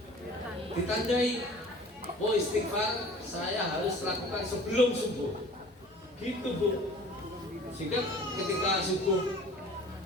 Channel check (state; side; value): normal; both; correlation 0.46